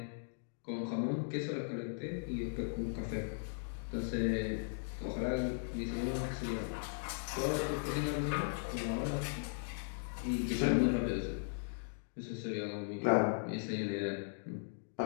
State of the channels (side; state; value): right; silent; digital silence